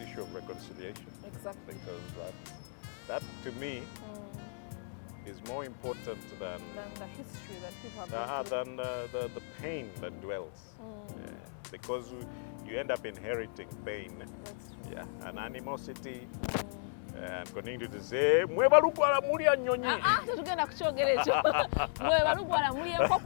issue of reconciliation. Exactly. Because that to me is more important than the history that people have than the pain that dwells. Yeah. Because you end up inheriting pain. Yeah, and animosity. And continue to say, mwebalugwala mulya nnyonyi. Tetugenda kukyogera ekyo. Mwebalugwala mulya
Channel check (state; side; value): silent; right; 54 dB below the other